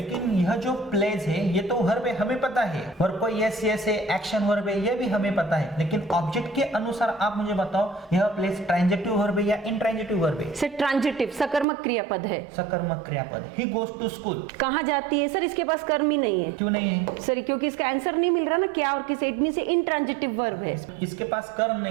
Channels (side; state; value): left; drops out; at 11.7 s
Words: यह जो प्लेज है ये तो वर्ब है, हमें पता है। वर्ब को यस यस है, एक्शन वर्ब है, ये भी हमें पता है। लेकिन ऑब्जेक्ट के अनुसार आप मुझे बताओ यह प्लेज ट्रांजिटिव वर्ब है या इंट्रांजिटिव वर्ब है? सर ट्रांजिटिव, सकर्मक क्रियापद है। सकर्मक क्रियापद। He goes to school. कहाँ जाती है? सर इसके पास कर्म ही नहीं है। क्यों नहीं है? सर क्योंकि इसका आंसर नहीं मिल रहा ना, क्या और किसे, इट मींस इंट्रांजिटिव वर्ब है। इसके पास कर्म